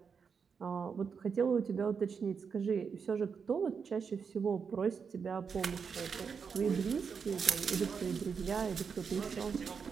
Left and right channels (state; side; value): quieter; left; 6.1 dB